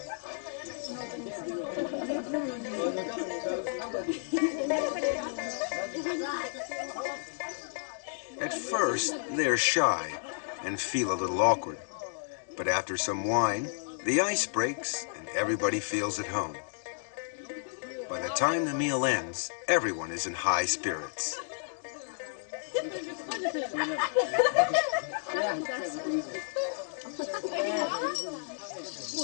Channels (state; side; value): silent; right; digital silence